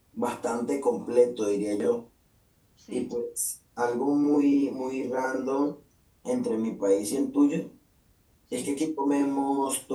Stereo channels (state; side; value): identical; both; correlation 1.00